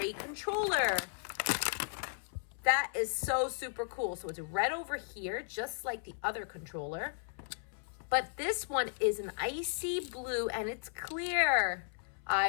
controller. That is so super cool. So it's red over here, just like the other controller. But this one is an icy blue and it's clear.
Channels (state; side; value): silent; right; 54 dB below the other